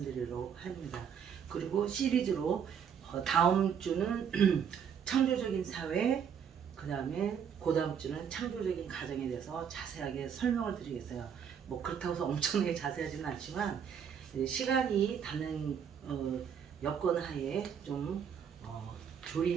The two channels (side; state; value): left; quieter; 7.7 dB